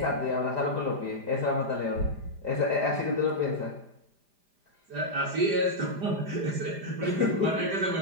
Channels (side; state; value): left; late; 5.0 ms